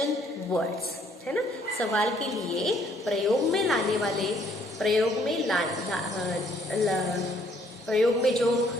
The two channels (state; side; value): normal; both; correlation 0.64